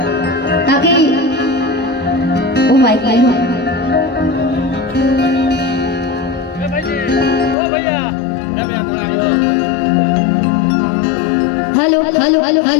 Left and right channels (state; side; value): drops out; right; at 7.6 s